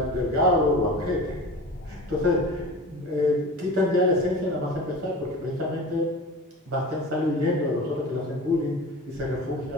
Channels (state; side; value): normal; both; correlation 0.35